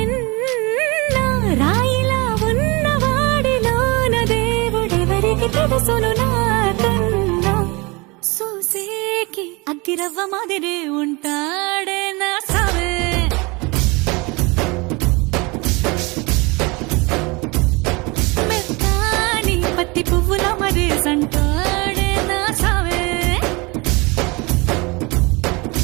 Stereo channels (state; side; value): quieter; left; 26.2 dB